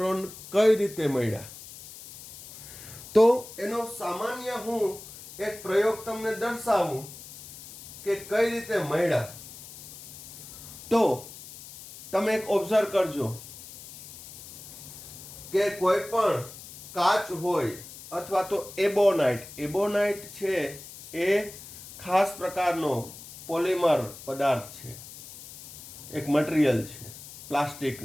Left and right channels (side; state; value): left; noise; hiss, 15 dB below the sound